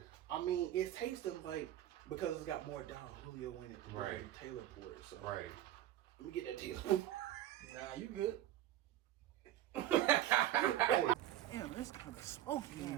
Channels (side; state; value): left; quieter; 12.7 dB